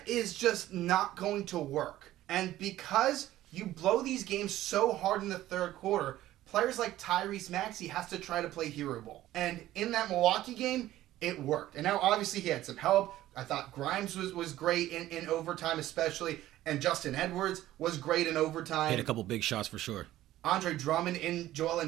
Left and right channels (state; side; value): quieter; left; 14.5 dB